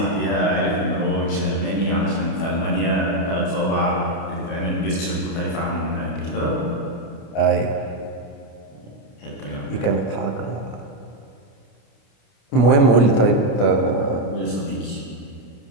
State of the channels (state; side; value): late; right; 29 ms